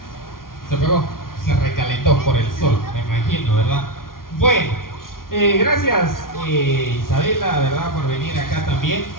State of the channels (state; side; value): late; right; 0.91 ms